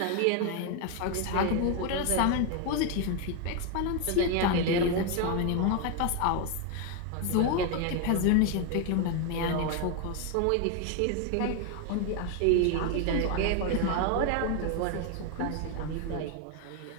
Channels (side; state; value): both; different; correlation 0.01